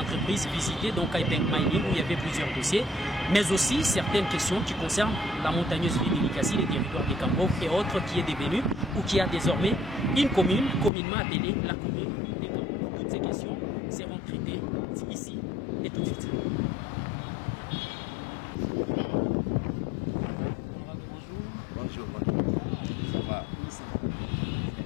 visitées, donc Kaipeng Mining, où il y avait plusieurs dossiers, mais aussi certaines questions qui concernent la montagneuse ville de Likasi, les territoires de Kambo et autres, qui est devenue ou qui a désormais une commune, communément appelée la commune de Kambo. Toutes ces questions seront traitées ici et tout de suite. Bonjour. Ça va?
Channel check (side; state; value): right; drops out; at 10.9 s